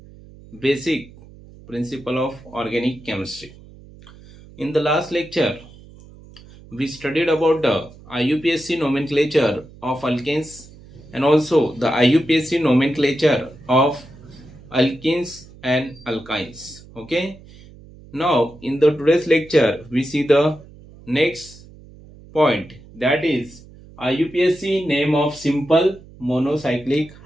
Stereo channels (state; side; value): noise; right; hum, 21 dB below the sound